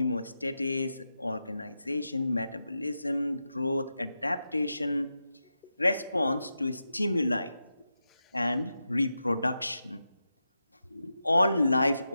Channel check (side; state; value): both; inverted; correlation -0.90